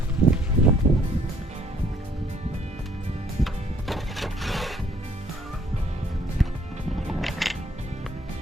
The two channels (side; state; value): both; normal; correlation 0.63